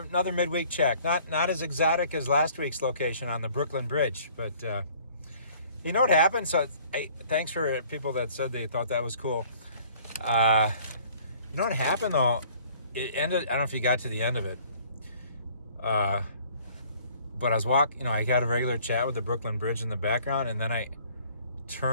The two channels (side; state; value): both; inverted; correlation -0.55